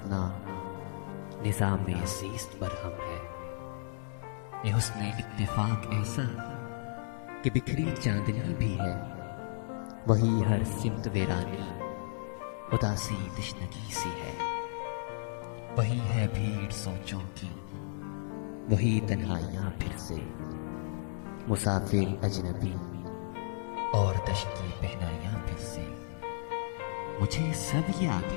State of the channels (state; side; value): silent; right; 55 dB below the other